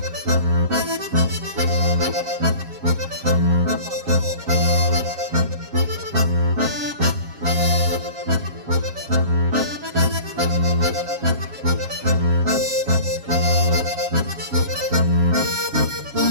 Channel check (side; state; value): left; late; 7.3 ms